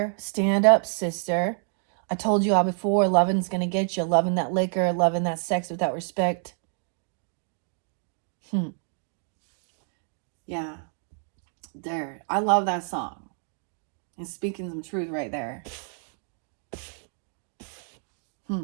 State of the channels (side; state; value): left; silent; 57 dB below the other